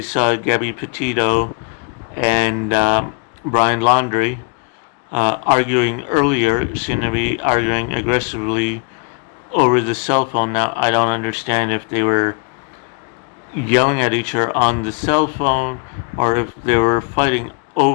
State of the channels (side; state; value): right; quieter; 33.6 dB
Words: saw Gabbi Petito and Brian Laundrie arguing earlier seemed to be arguing aggressively over the cell phone. Now, I don't understand if they were yelling at each other on the cell phone or if they were fighting